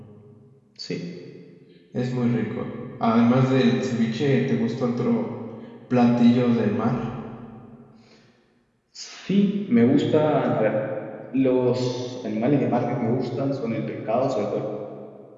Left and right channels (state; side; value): identical; both; correlation 1.00